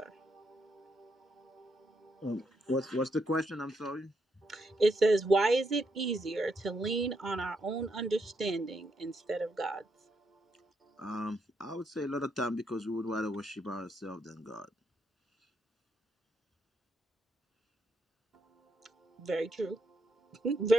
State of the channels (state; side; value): normal; both; correlation 0.79